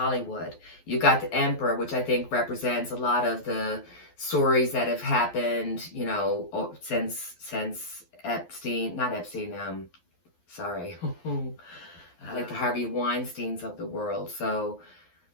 You've got the Emperor, which I think represents a lot of the stories that have happened, since Epstein, like the Harvey Weinsteins of the world. So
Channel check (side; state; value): right; late; 11 ms